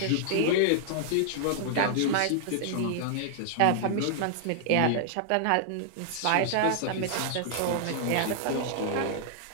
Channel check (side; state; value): both; different; correlation -0.01